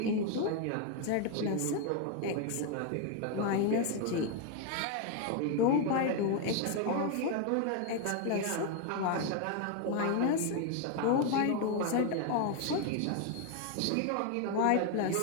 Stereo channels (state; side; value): different; both; correlation 0.01